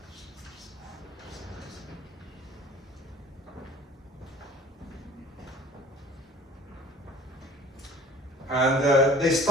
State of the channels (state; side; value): normal; both; correlation 0.46